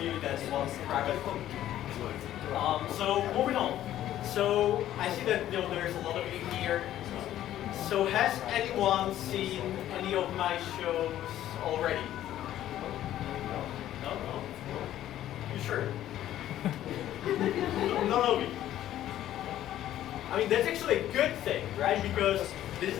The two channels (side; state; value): right; quieter; 12.6 dB